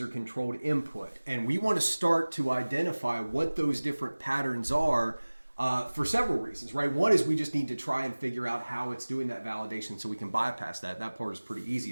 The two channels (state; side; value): inverted; both; correlation -1.00